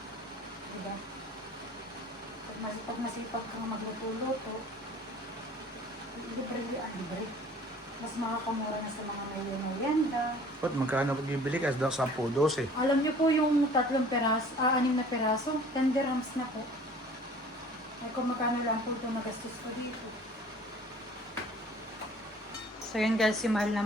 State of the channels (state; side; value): normal; both; correlation 0.49